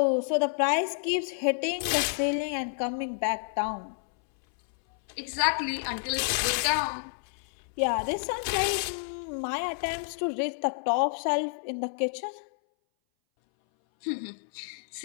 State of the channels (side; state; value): right; silent; 58 dB below the other